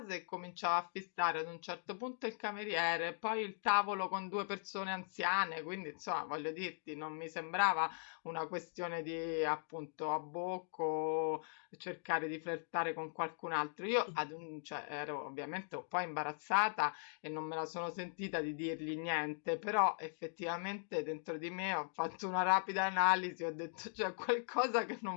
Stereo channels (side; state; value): right; silent; digital silence